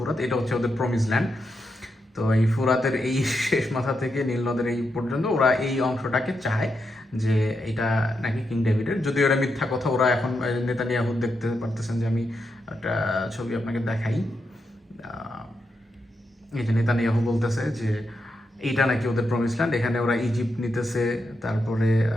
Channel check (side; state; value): both; normal; correlation 0.84